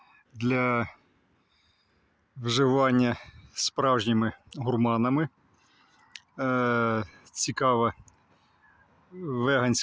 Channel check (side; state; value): both; identical; correlation 1.00